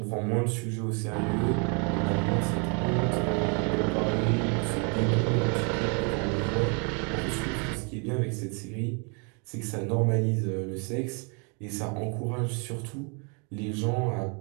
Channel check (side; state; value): left; quieter; 35.8 dB